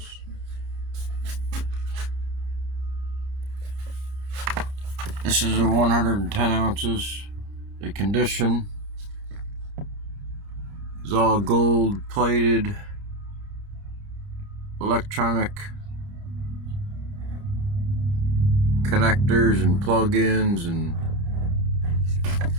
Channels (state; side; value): late; left; 30 ms